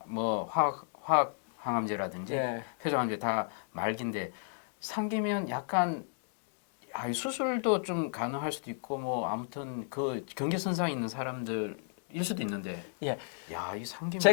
뭐 화학 항암제라든지 예. 회전항암제 다 말기인데 상기면 약간 수술도 좀 가능할 수도 있고 뭐 아무튼 그 경계선상에 있는 사람들일 수도 있는데 예. 야, 이 상기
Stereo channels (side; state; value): right; silent; digital silence